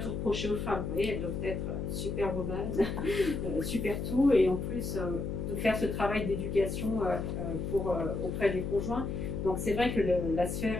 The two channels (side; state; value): left; noise; hum, 3 dB below the sound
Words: reprocher aux femmes. Vous voyez, elles doivent être superwoman, super tout, et en plus de faire ce travail d'éducation auprès des conjoints. Donc c'est vrai que la